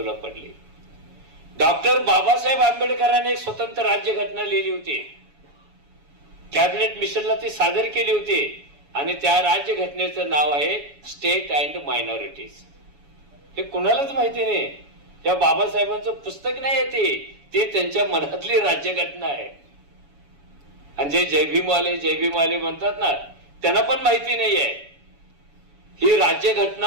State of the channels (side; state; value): left; late; 7.1 ms